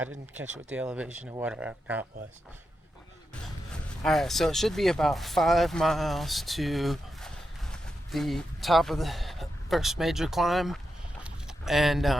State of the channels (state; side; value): normal; both; correlation 0.87